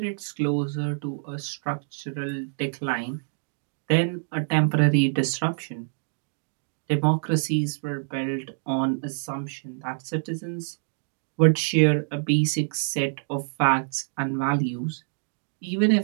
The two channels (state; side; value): silent; left; digital silence